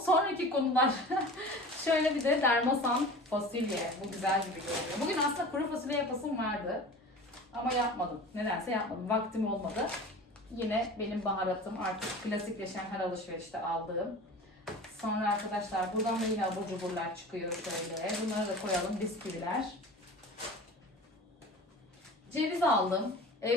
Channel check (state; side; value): normal; both; correlation 0.37